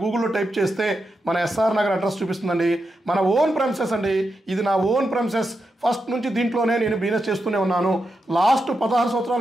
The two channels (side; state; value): both; normal; correlation 0.87